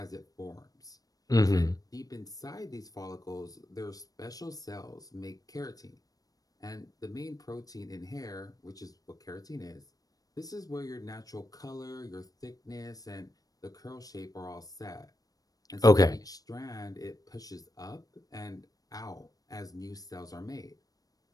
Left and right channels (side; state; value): right; late; 0.18 ms